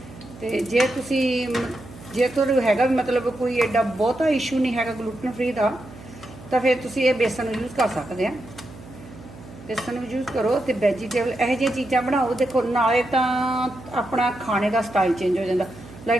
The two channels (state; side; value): noise; right; hum, 18 dB below the sound